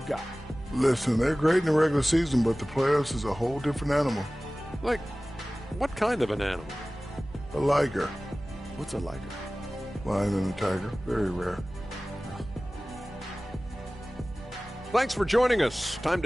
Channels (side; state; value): both; normal; correlation 0.97